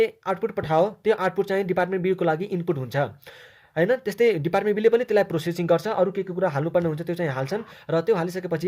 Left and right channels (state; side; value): identical; both; correlation 1.00